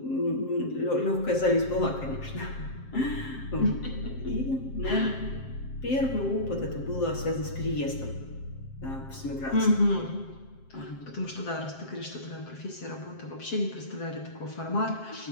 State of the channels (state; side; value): late; right; 7.6 ms